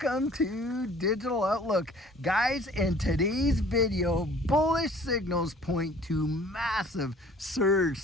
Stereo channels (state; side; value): normal; both; correlation 0.51